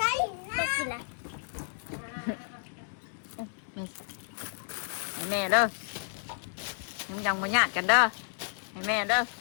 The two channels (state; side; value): silent; right; digital silence